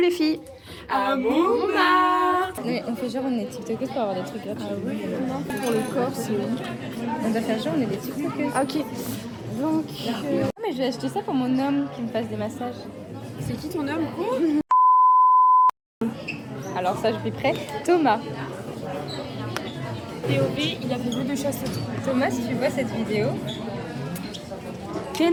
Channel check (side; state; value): both; identical; correlation 1.00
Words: filles? À Montmartre. Mais on fait genre on est tiktokers pour avoir des trucs gratuits. Ah oui, non, pour le corps c'est... On doit faire genre on est des tiktokers. Ah, ok. Donc... Mais je vais acheter ça pour mon homme qui me fasse des massages. C'est qui ton homme? Alors ça je suis prête. Thomas. POV, il a fait jeu de chasse. Thomas, si tu vois cette vidéo.